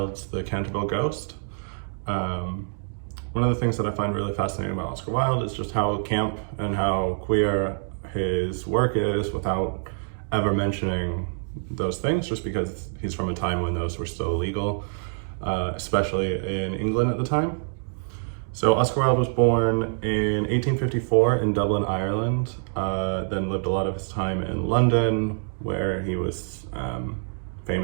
The Canterville Ghost. One of the things that I find really fascinating about Oscar Wilde is just how camp and how queer his work is without ever mentioning those things, just because he's from a time when those were still illegal, especially in England at the time. So Oscar Wilde was born in 1854 in Dublin, Ireland, then lived a lot of his time in London, where he was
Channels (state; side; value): silent; left; 61 dB below the other